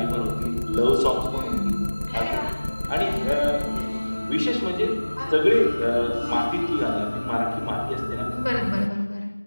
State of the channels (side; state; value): both; inverted; correlation -1.00